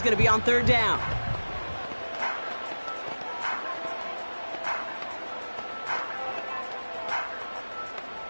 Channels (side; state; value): both; inverted; correlation -1.00